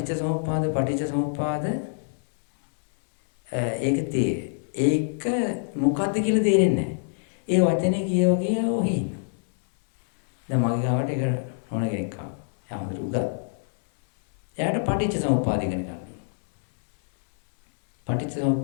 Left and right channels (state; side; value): silent; right; 62 dB below the other